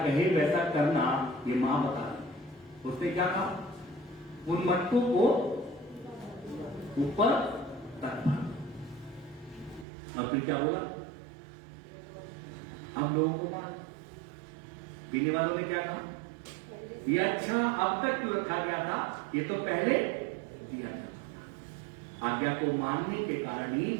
कहे वैसा करना, ये मां बता रही। उसने क्या कहा, उन मटकों को ऊपर रखना। अब फिर क्या बोला, अब लोगों को बात, पीने वालों ने क्या कहा, ये अच्छा अब तक क्यों रखा गया था, ये तो पहले दिया जाता। आज्ञा को मानने के कारण ही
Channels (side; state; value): left; drops out; at 9.9 s